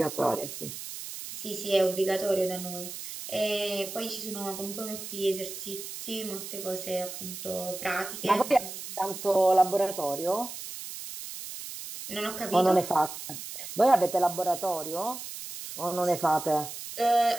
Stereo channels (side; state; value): right; noise; hiss, 9 dB below the sound